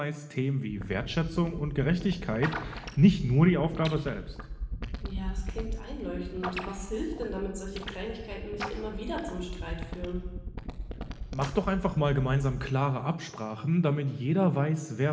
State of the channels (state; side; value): identical; both; correlation 1.00